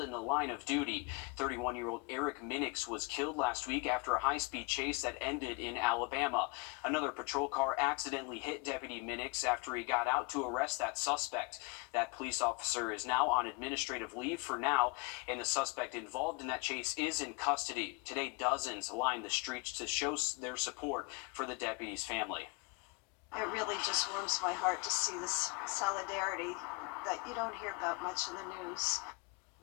in the line of duty. 31-year-old Eric Minix was killed last week after a high-speed chase that ended in Alabama. Another patrol car accidentally hit Deputy Minix after he got out to arrest that suspect. That police officer is now on administrative leave for now, and the suspect involved in that chase is in custody. Today, dozens lined the streets to show their support for the deputy's family. It really just warms my heart to see this solidarity that you don't hear about much in the news.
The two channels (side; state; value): right; quieter; 30.2 dB